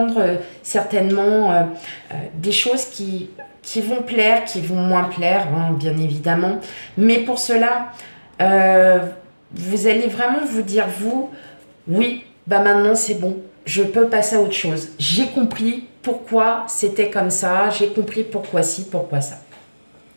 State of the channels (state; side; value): inverted; both; correlation -1.00